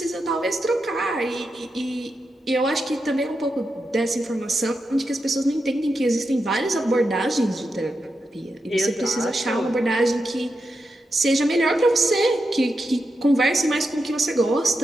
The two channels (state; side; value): normal; both; correlation 0.87